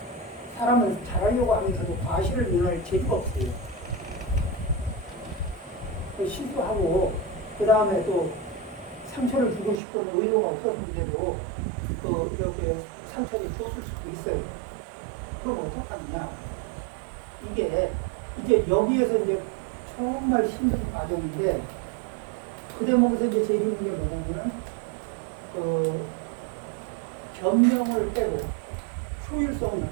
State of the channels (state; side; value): drops out; left; at 9.8 s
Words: 사람은 잘하려고 하면서도 과실을 면할 재주가 없어요. 실수하고 그 다음에 또 상처를 주고 싶은 의도가 없었는데도 이렇게 상처를 주었을 수도 있어요. 그럼 어떡하느냐? 이게 이제 여기에서 이제 정말 힘든 과정인데 그 대목에서 이제 제일 힘든 게 뭐냐면 변명을 빼고 효율성